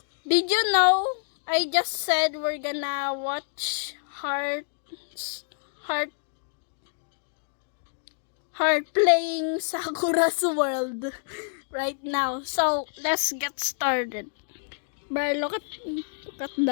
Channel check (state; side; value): silent; right; digital silence